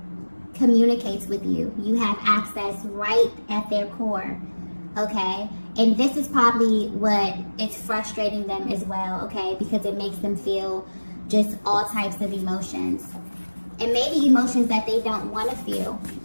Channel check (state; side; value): inverted; both; correlation -1.00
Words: communicates with you. You have access right at their core, okay? And this is probably what is frustrating them as well, okay? Because it makes them feel just all types of emotions. And maybe emotions that they don't want to feel,